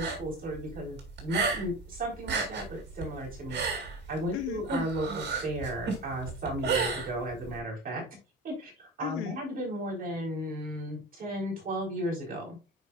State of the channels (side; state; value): both; normal; correlation 0.31